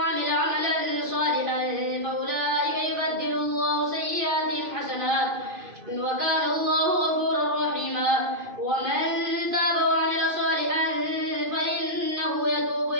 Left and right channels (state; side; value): late; left; 2.5 ms